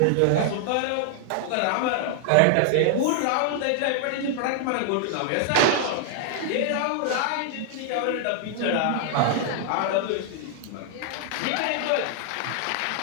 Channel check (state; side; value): different; both; correlation 0.00